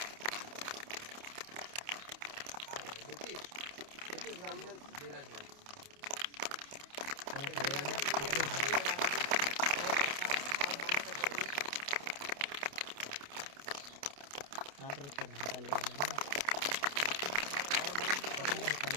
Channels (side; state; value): left; late; 28 ms